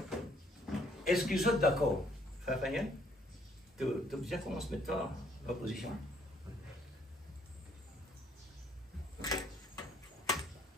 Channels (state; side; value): normal; both; correlation 0.65